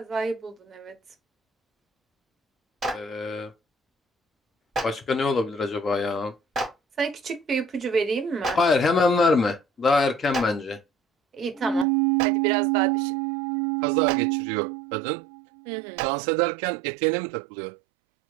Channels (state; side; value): drops out; left; at 11.9 s